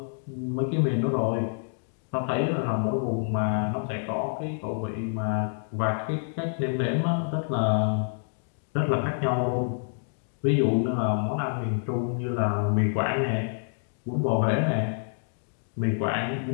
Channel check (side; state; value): right; silent; digital silence